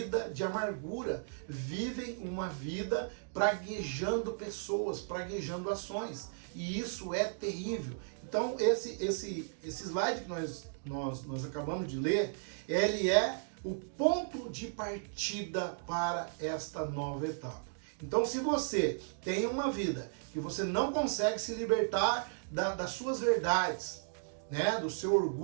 de amargura, vivem uma vida praguejando pessoas, praguejando ações. E isso é terrível. Então esse slide que nós acabamos de ler, ele é o ponto de partida para esta nova etapa. Então se você tem uma vida que você não consegue se libertar das suas verdades, né, do seu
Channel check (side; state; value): left; silent; digital silence